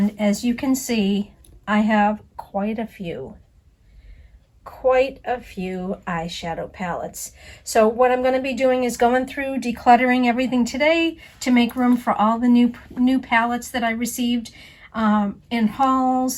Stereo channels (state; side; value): identical; both; correlation 1.00